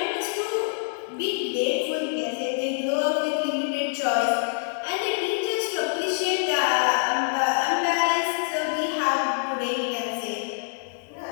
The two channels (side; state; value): right; silent; digital silence